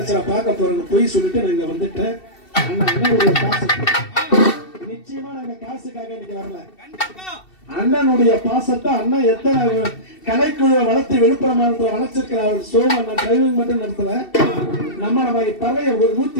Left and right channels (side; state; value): right; late; 2.7 ms